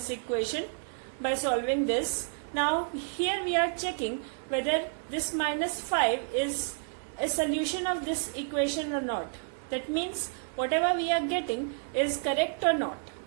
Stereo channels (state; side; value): silent; left; 58 dB below the other